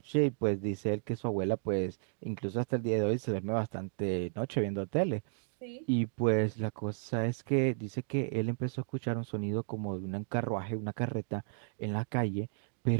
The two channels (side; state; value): left; silent; digital silence